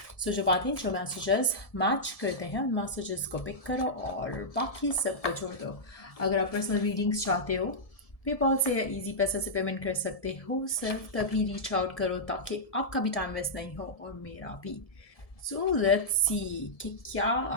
सो जो बातें जो मैसेजेस मैच करते हैं उन मैसेजेस को पिक करो और बाकी सब को छोड़ दो। अगर आप पर्सनल रीडिंग्स चाहते हो पेपॉल से या इजी पैसे से पेमेंट कर सकते हो। सिर्फ तभी रीच आउट करो ताकि आपका भी टाइम वेस्ट नहीं हो और मेरा भी। सो लेट्स सी कि क्या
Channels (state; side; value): late; right; 1.7 ms